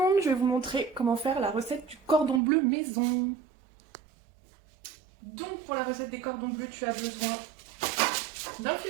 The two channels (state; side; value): drops out; left; at 2.4 s